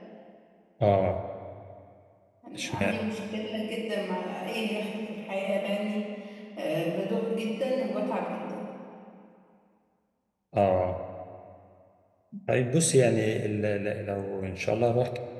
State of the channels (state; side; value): identical; both; correlation 1.00